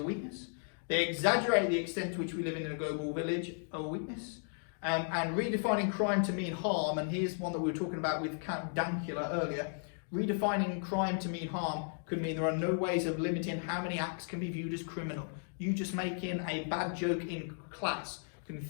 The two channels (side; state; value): right; silent; digital silence